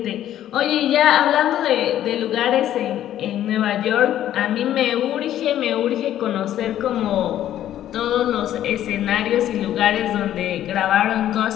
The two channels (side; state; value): right; quieter; 11.9 dB